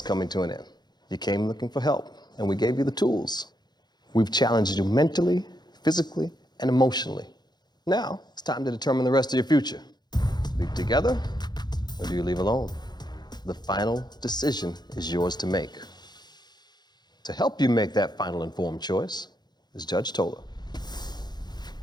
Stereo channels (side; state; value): right; late; 0.20 ms